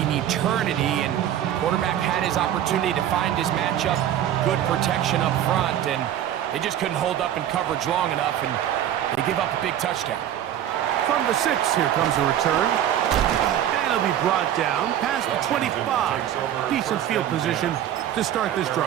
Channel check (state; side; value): quieter; left; 11.1 dB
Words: eternity. And quarterback had his opportunity to find his matchup, good protection up front, and they just couldn't hold up in coverage long enough, and they give up a big touchdown. From the 6, here comes a return. And it'll be brought down past the 25. Decent field position to start this